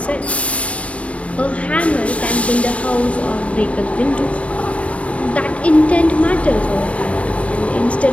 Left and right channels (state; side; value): late; right; 0.063 ms